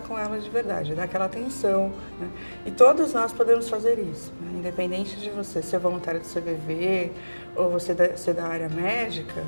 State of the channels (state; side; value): inverted; both; correlation -1.00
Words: com ela de verdade, dar aquela atenção, né? E todos nós podemos fazer isso, né? Independente de você ser voluntário do CVV ou você ser da área médica,